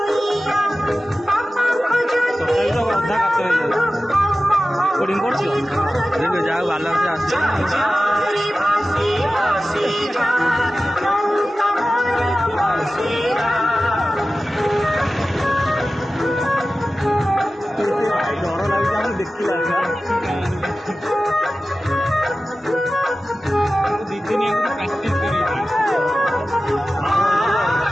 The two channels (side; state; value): both; normal; correlation 0.95